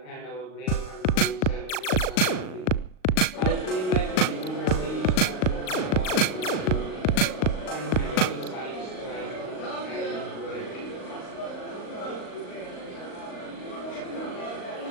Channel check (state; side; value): late; right; 38 ms